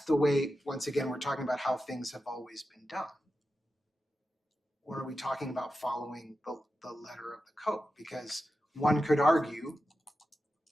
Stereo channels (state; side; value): normal; both; correlation 0.91